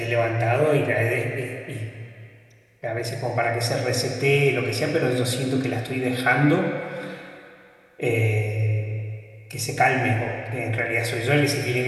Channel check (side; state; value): both; identical; correlation 1.00